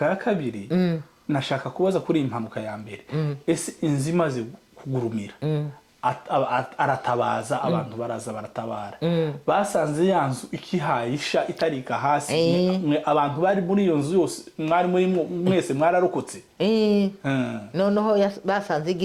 ya kabiri, nashaka kubaza kuri impanuka ya mbere. Ese inzimaze kugurumira aratabaza, abantu baraza baratabara, basanze yanzu ikihayisha itarika hasi, abantu bari muri iyo nzu yose mwari muri mwese mwararokotse. Noneho basanze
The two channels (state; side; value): identical; both; correlation 1.00